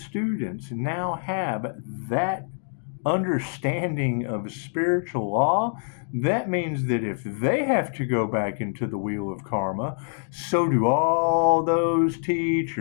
now have that understanding of spiritual law, that means that if they have to go back into the wheel of karma, so do all those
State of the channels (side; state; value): right; silent; digital silence